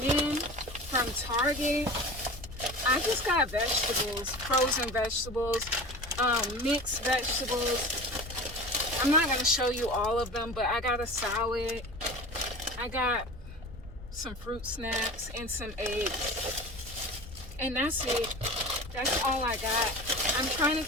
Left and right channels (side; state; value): both; normal; correlation 0.35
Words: then from Target, I just got vegetables, frozen vegetables, mixed vegetables. I'm not going to show you all of them, but I got a salad. I got some fruit snacks and some eggs. And that's it. That's all I got. I'm trying